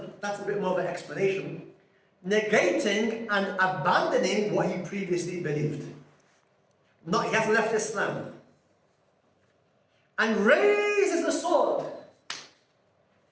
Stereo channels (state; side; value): identical; both; correlation 1.00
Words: that's a bit more of an explanation, negating and abandoning what he previously believed. Not, he hasn't left Islam. And raises the sword.